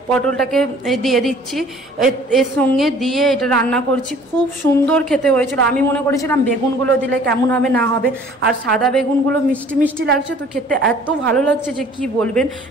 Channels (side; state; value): both; normal; correlation 0.52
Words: পটলটাকে দিয়ে দিচ্ছি, এর সঙ্গে দিয়ে এটা রান্না করছি। খুব সুন্দর খেতে হয়েছিল। আমি মনে করেছিলাম বেগুনগুলো দিলে কেমন হবে না হবে, আর সাদা বেগুনগুলো মিষ্টি মিষ্টি লাগছে, তো খেতে এত ভালো লাগছে যে কি বলবেন।